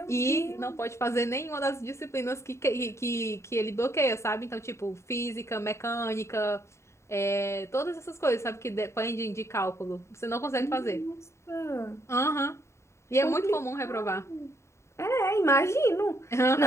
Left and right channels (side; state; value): right; late; 0.13 ms